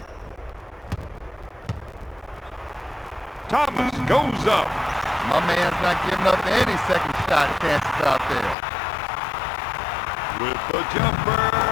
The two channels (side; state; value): right; drops out; at 8.6 s